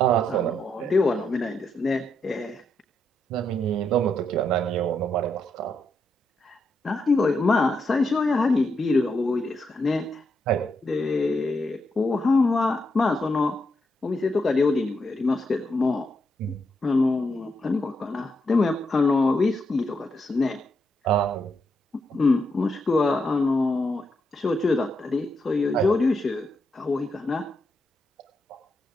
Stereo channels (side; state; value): both; normal; correlation 0.81